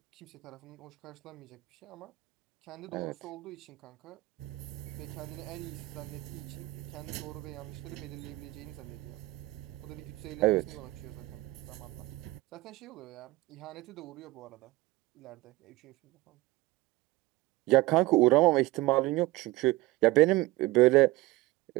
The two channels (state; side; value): quieter; left; 19.7 dB